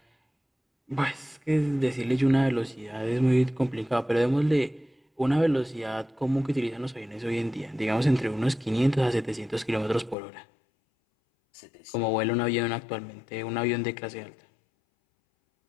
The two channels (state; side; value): drops out; right; at 10.2 s